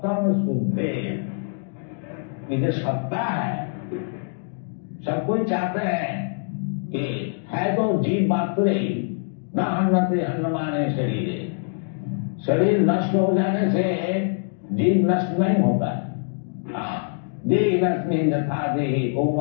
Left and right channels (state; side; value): silent; right; digital silence